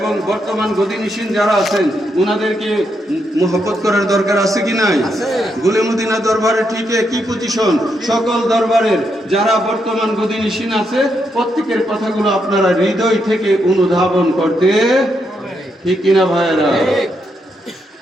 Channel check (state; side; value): normal; both; correlation 0.80